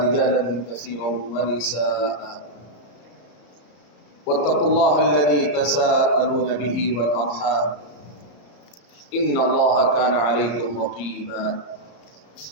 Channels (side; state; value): right; late; 34 ms